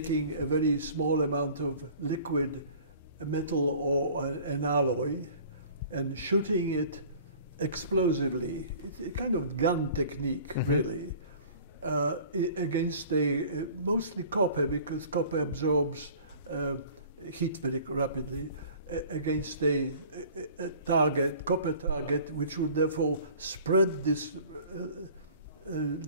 a very small amount of liquid metal or an alloy and shooting it explosively. It's a kind of gun technique, mm-hmm. really, against mostly copper, because copper absorbs heat very rapidly, against a copper target, which would therefore spread this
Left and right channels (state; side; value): inverted; both; correlation -0.47